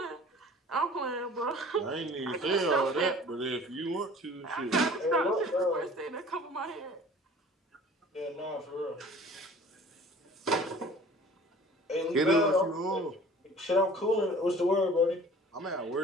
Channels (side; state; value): both; normal; correlation 0.47